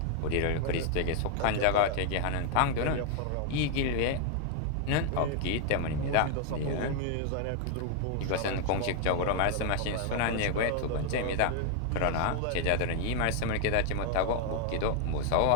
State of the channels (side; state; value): both; different; correlation 0.00